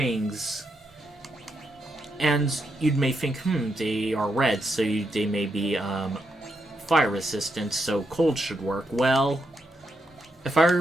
and you may think, they are red, so they may be fire resistant, so cold should work. Well, if I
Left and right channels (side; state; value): both; normal; correlation 0.81